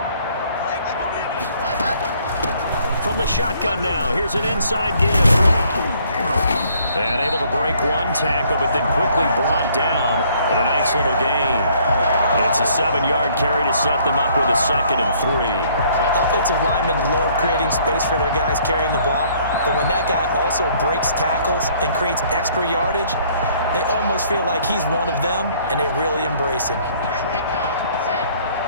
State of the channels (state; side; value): inverted; both; correlation -0.62